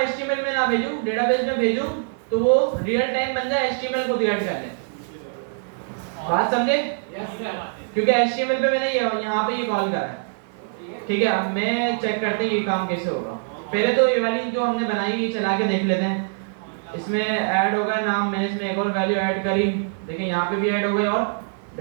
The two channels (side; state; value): left; silent; digital silence